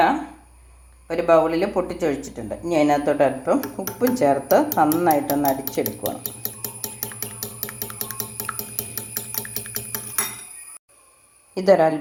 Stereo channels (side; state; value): both; identical; correlation 1.00